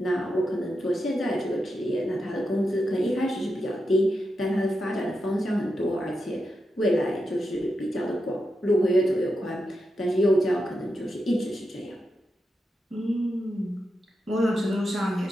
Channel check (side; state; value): both; normal; correlation 0.87